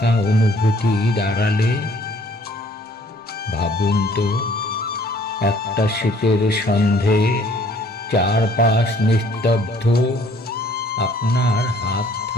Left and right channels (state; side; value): normal; both; correlation 0.59